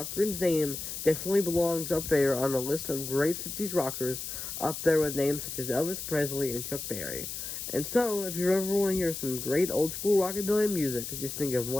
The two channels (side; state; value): left; noise; hiss, 6 dB below the sound